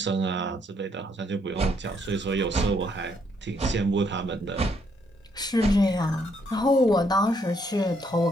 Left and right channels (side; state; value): both; normal; correlation 0.72